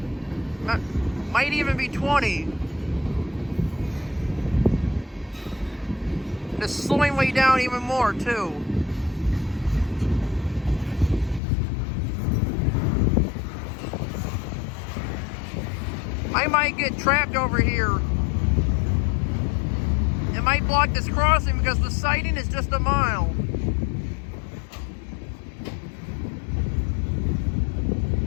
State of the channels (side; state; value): right; drops out; at 11.4 s